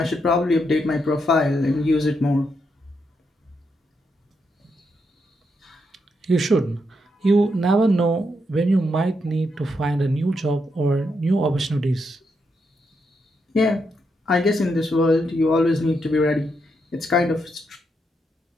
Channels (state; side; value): normal; both; correlation 0.81